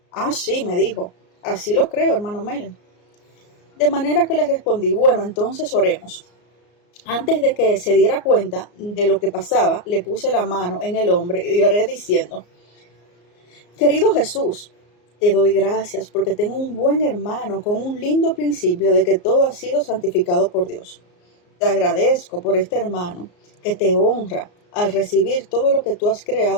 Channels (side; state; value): right; late; 34 ms